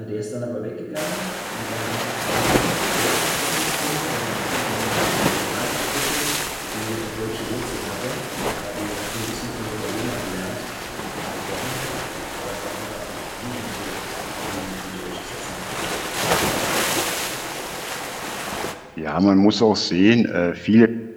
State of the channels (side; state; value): both; identical; correlation 1.00